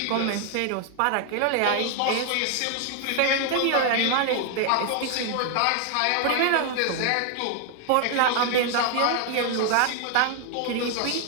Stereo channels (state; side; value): different; both; correlation 0.00